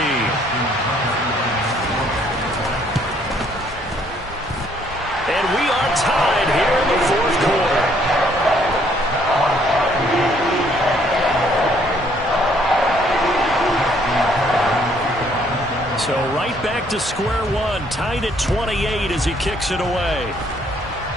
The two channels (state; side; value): normal; both; correlation 0.65